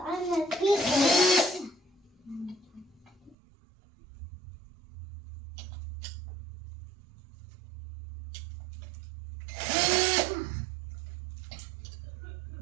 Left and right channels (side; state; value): left; drops out; at 3.4 s